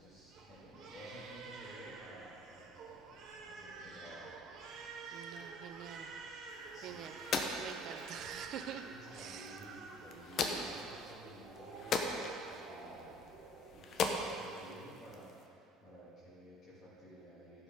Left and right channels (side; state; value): both; normal; correlation 0.52